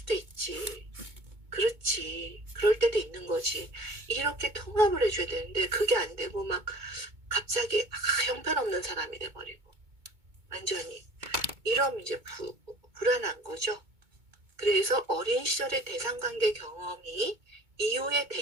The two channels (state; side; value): late; left; 2.2 ms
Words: 있지. 그렇지. 그럴 때도 있는 거지. 이렇게 통합을 해줘야 되는데 그게 안 되고 막 갑자기 형편없는 사람이 돼버리고 완전히 이러면 이제 불안한 거죠. 그래서 어린 시절의 대상관계 경험이 이후의